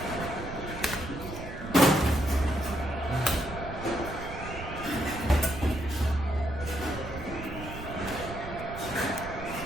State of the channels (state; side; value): noise; right; rumble, 10 dB below the sound